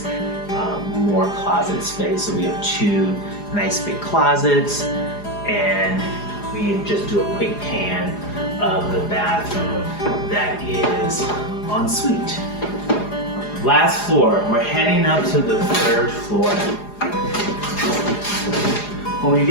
More closet space. So we have 2 nice big closets, and we just do a quick pan of the bathroom that is en suite. Last floor, we're heading up to the 3rd floor. When we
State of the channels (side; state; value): right; late; 4.9 ms